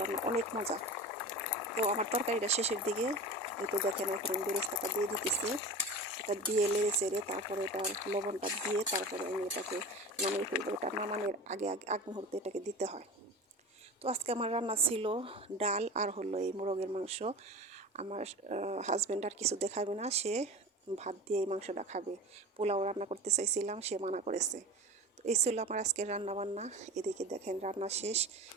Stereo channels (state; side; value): normal; both; correlation 0.32